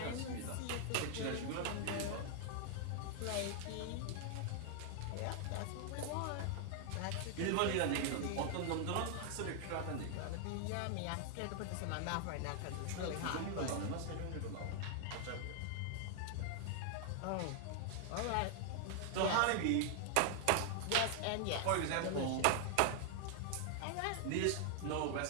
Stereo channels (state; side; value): different; both; correlation 0.00